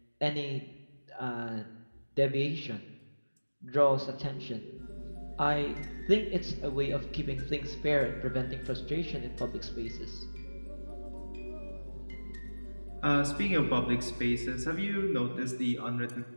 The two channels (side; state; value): both; inverted; correlation -1.00